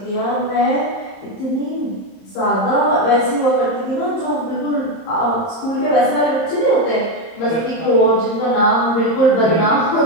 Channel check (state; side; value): late; right; 30 ms